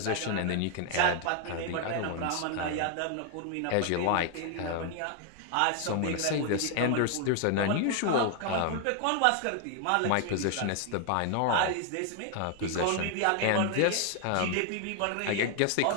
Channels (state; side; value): different; both; correlation 0.00